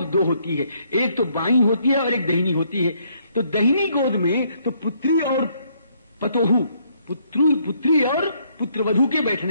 दो होती है, एक तो बाईं होती है और एक दहिनी होती है। तो दहिनी गोद में तो पुत्री और पतोहू, पुत्री और पुत्रवधू के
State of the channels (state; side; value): inverted; both; correlation -0.69